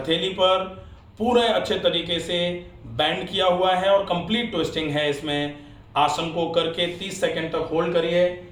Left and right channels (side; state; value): both; identical; correlation 1.00